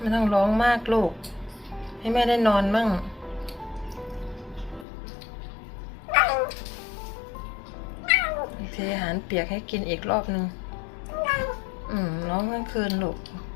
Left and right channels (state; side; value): drops out; right; at 4.9 s